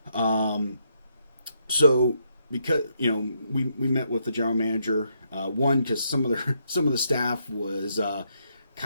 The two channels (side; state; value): both; inverted; correlation -0.77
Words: So because we met with the general manager, one because some of the staff was